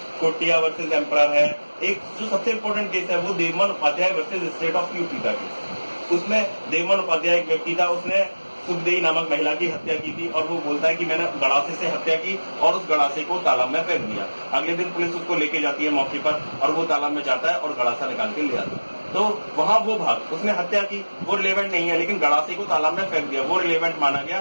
कोटिया वर्सेस एम्परर है। एक जो सबसे इंपॉर्टेंट केस है वो Devman Upadhyay versus state of UP का केस। उसमें देवमन उपाध्याय एक व्यक्ति था, उसने सुखदेई नामक महिला की हत्या की थी और वो बोलता है कि मैंने गड़ासे से हत्या की और उस गड़ासे को तालाब में फेंक दिया। अगले दिन पुलिस उसको लेके जाती है मौके पर और वो तालाब में जाता है और गड़ासा निकाल के ले आता है। तो वहां वो भाग उसने हत्या की वो रिलेवेंट नहीं है, लेकिन गड़ासे को तालाब में फेंक दिया वो रिलेवेंट माना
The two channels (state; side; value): inverted; both; correlation -1.00